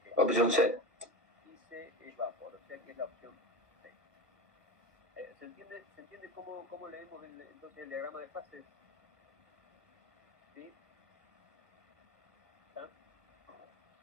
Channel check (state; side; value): late; left; 1.7 ms